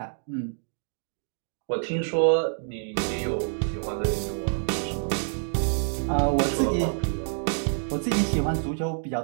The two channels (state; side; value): silent; left; digital silence